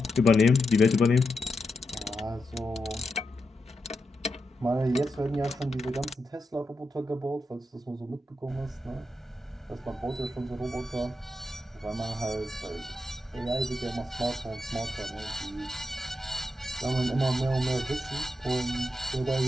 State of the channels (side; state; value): both; normal; correlation 0.86